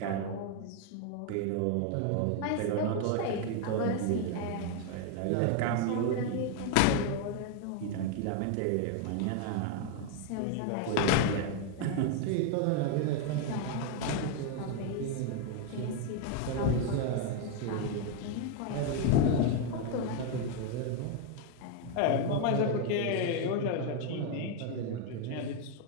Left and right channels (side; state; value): both; different; correlation 0.01